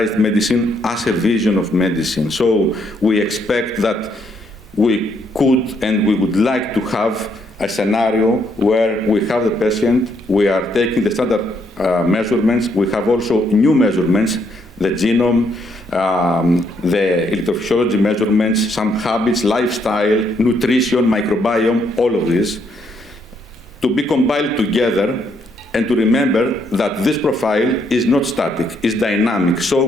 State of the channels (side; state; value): both; normal; correlation 0.73